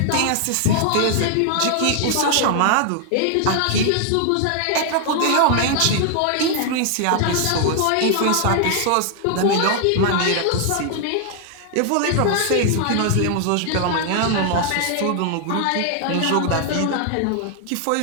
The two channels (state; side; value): different; both; correlation 0.00